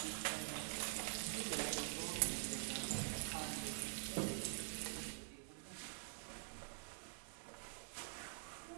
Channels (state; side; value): silent; left; digital silence